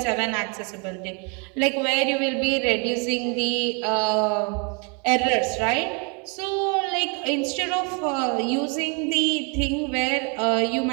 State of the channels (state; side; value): quieter; left; 34.9 dB